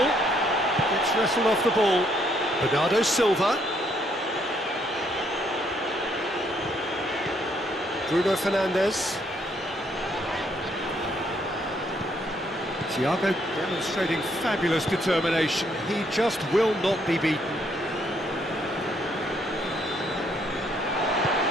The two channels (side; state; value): both; normal; correlation 0.70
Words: Gets wrestled off the ball. Bernardo Silva. Bruno Fernandes. Thiago demonstrating fabulous determination. He just will not be beaten.